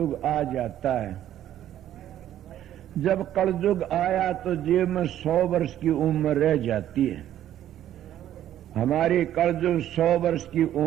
आ जाता है। जब कलयुग आया तो जीव में 100 वर्ष की उम्र रह जाती है। हमारी कलयुग 100 वर्ष की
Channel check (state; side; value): quieter; left; 11.7 dB